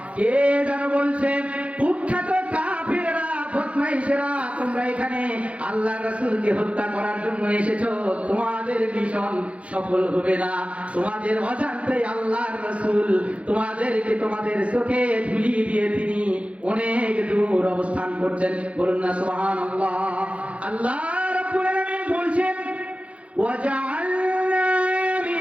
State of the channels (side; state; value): left; late; 0.063 ms